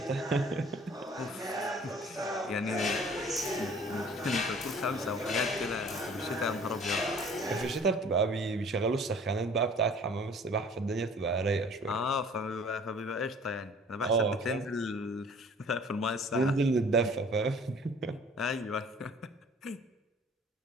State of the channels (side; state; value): both; normal; correlation 0.51